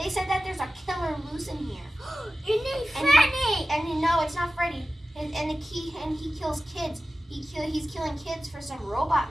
said that there's a killer loose in here. Your name's Freddy. And no, it's not Freddy. And he kills kids. He's killing kids for some robot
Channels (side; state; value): both; normal; correlation 0.95